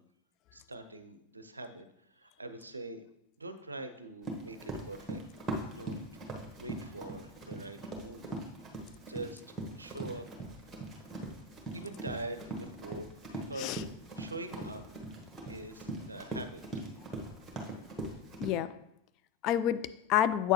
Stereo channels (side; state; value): right; quieter; 4.4 dB